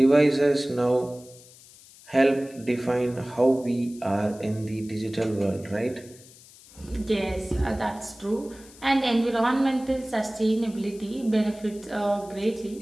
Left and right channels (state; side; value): noise; left; hiss, 22 dB below the sound